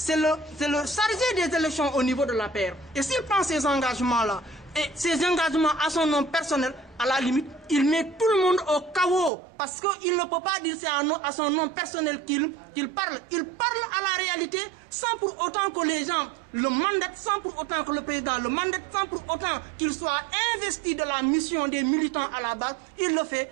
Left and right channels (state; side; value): drops out; left; at 9.3 s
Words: le chargé des élections au niveau de la paire. Et s'il prend ces engagements-là, et ces engagements à son nom personnel, à la limite, il met tout le monde au chaos. Parce qu'il ne peut pas dire c'est à son nom personnel qu'il parle. Il parle à la réalité sans pour autant que les gens le mandatent, sans pour autant que le président le mandate, sans pour autant qu'il soit investi de la mission des militants à la base. Il le fait,